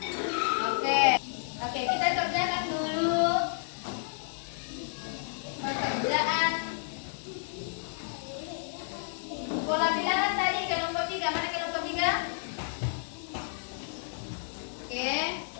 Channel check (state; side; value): silent; right; digital silence